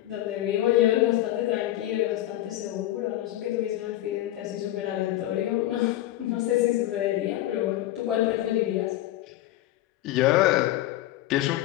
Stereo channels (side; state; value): right; quieter; 14.7 dB